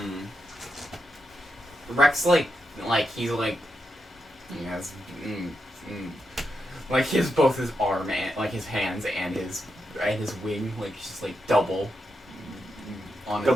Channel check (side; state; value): both; normal; correlation 0.85